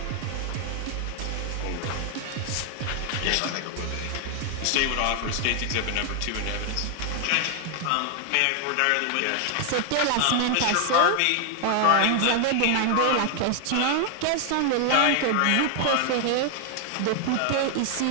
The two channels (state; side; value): different; both; correlation 0.00